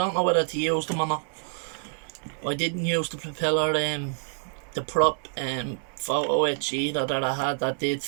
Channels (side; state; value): left; silent; digital silence